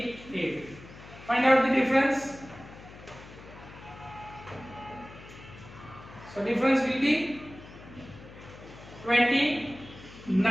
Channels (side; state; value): left; noise; hum, 17 dB below the sound